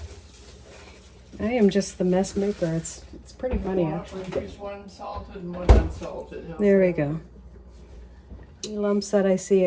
I am just the mess maker. It's pretty funny actually. We use one salted and one unsalted. How's There we that? go. Any lumps that I see,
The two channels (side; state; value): both; identical; correlation 1.00